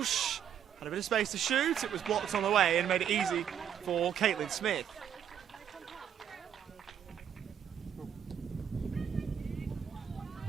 had a bit of space to shoot. It was blocked on the way and made it easy for Caitlin Smith.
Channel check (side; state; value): left; quieter; 9.0 dB